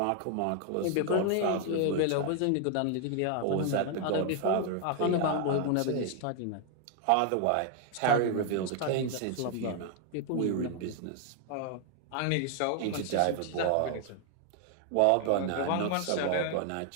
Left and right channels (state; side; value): different; both; correlation 0.00